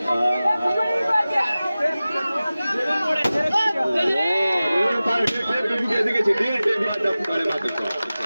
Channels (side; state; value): both; inverted; correlation -0.97